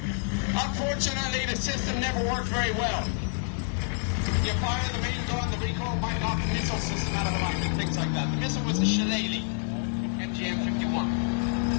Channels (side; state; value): right; silent; 59 dB below the other